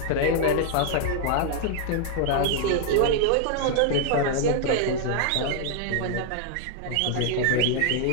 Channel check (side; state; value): both; different; correlation 0.00